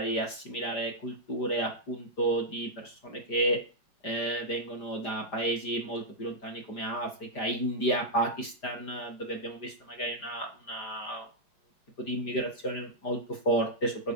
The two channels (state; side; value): late; right; 5.0 ms